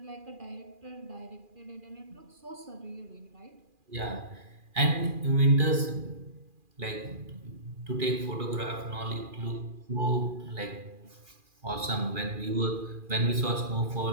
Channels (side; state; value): left; late; 2.4 ms